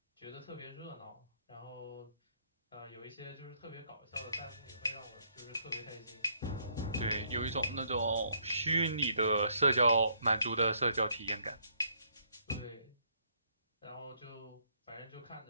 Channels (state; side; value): inverted; both; correlation -0.69